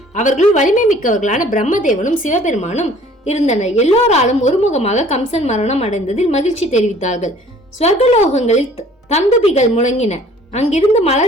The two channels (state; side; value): normal; both; correlation 0.53